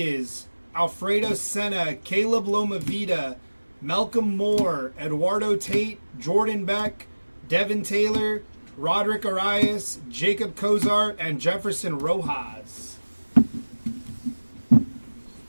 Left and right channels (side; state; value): both; inverted; correlation -1.00